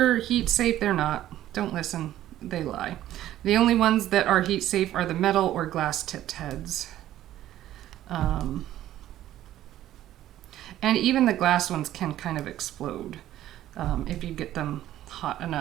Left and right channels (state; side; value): quieter; left; 13.1 dB